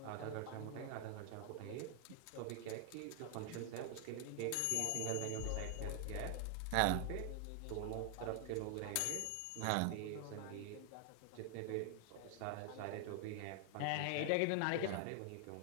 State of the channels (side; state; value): both; different; correlation 0.00